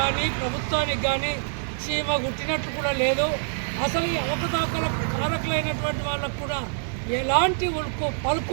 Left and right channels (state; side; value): silent; left; 61 dB below the other